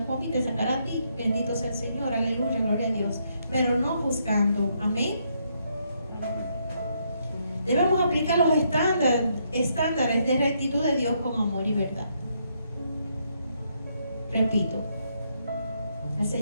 a mí, te sacará a ti. Bendito sea el Señor, aleluya, gloria a Dios. Pero no juzgando, amén. Debemos aplicar los estándares de rectitud de Dios con amor y verdad. Repito, el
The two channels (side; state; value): both; inverted; correlation -0.75